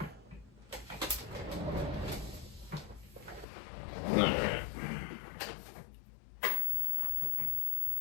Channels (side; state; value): right; drops out; at 3.5 s